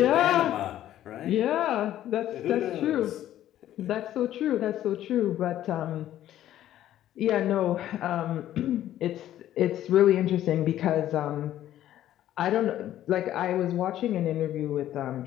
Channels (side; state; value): right; quieter; 12.5 dB